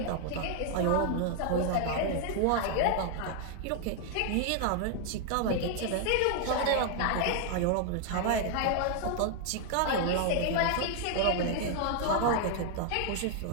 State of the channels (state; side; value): different; both; correlation 0.00